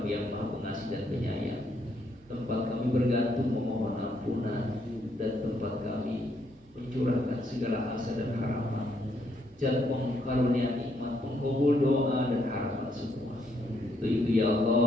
yang Maha Pengasih dan Penyayang. Tempat kami bergantung memohon ampunan dan tempat kami mencurahkan segala asa dan harapan. Jangan pengkarunia nikmat, pengkabul doa dan harapan semua. Untuk itu ya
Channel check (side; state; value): both; normal; correlation 0.74